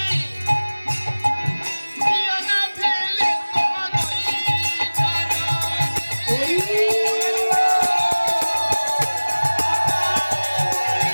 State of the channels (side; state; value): both; inverted; correlation -1.00